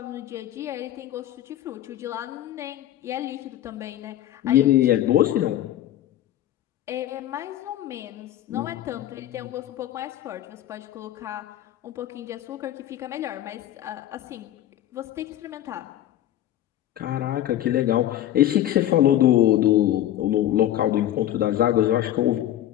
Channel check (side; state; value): right; quieter; 12.6 dB